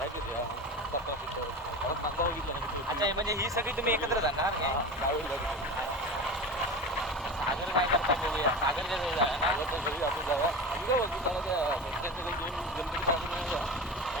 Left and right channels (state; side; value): normal; both; correlation 0.29